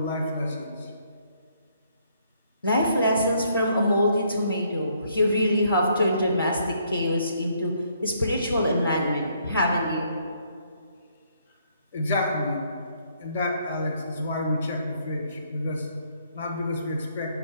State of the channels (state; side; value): inverted; both; correlation -0.69